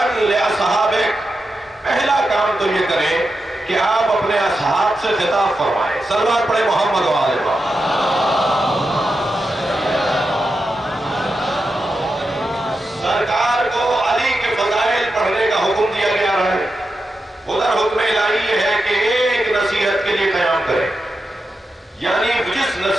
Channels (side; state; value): both; normal; correlation 0.88